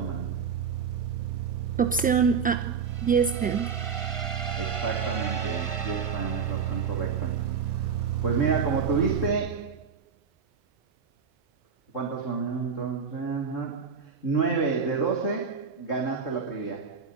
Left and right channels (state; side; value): quieter; left; 6.1 dB